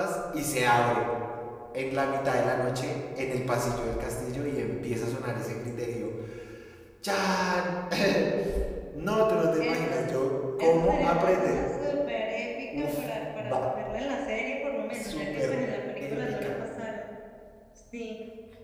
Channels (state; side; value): identical; both; correlation 1.00